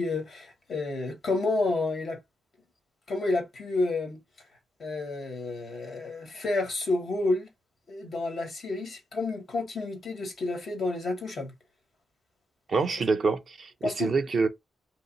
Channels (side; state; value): both; normal; correlation 0.82